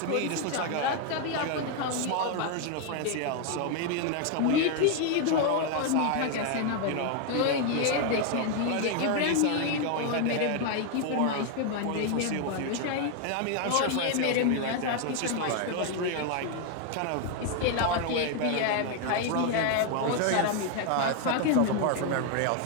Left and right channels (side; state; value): both; different; correlation 0.00